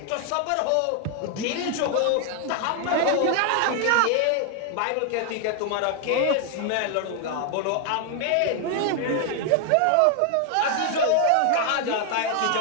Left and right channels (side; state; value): both; different; correlation 0.00